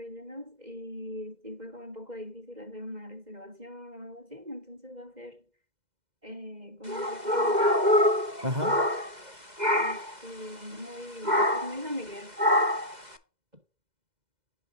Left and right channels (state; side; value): late; left; 2.0 ms